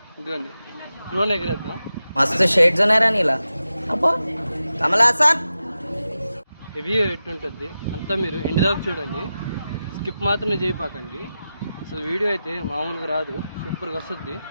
ఇదిగోండి, డ్రోన్ ఎగరేద్దాం. మస్తు షేడ్స్ ఉన్నారా నీలా? అబ్బో కమలాసన్ రివ్యూ ఎట్టుంటుంది అంతా మీరు ఎండ్ దాకా చూడండి, స్కిప్ మాత్రం చేయపాకండి. అసలు వీడియో అయితే మామూలుగా రాదు, సూపర్గా వస్తుంది.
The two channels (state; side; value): inverted; both; correlation -0.92